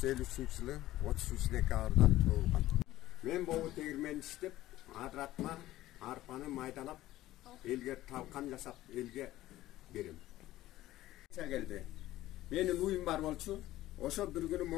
жылы 33 декабрда туылған. Мен болу тегірмен іштеп, адыратма арпаны майдалап, елге талқан жасап, елге берем. Келді. Менің уйым бар болчу, ошо бір күні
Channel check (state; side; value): quieter; right; 15.5 dB